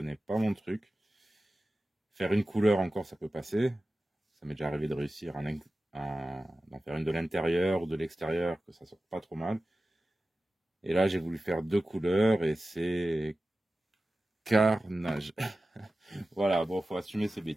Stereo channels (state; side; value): normal; both; correlation 0.95